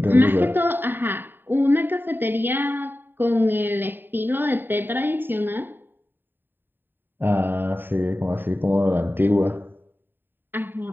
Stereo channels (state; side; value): late; left; 0.095 ms